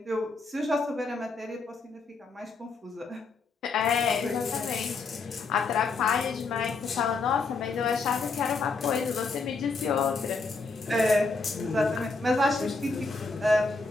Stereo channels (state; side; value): quieter; right; 3.9 dB